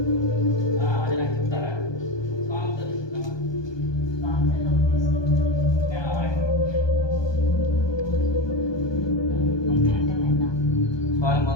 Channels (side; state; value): right; late; 1.2 ms